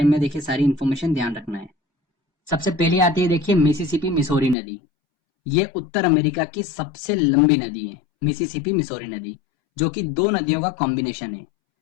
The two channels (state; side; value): drops out; right; at 4.5 s